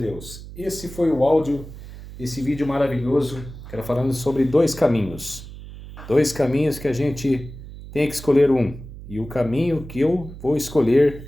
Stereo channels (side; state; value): right; noise; hum, 14 dB below the sound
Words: esse foi o áudio desse vídeo maravilhoso, que era falando sobre dois caminhos. Dois caminhos que a gente tem que escolher um. E o caminho que eu vou